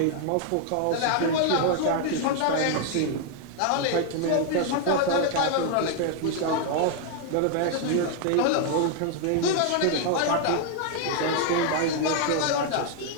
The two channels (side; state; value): both; different; correlation 0.00